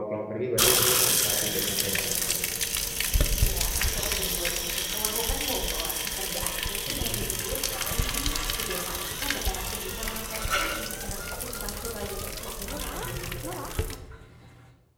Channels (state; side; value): identical; both; correlation 1.00